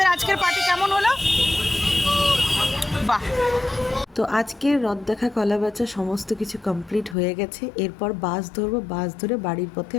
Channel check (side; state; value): right; drops out; at 7.2 s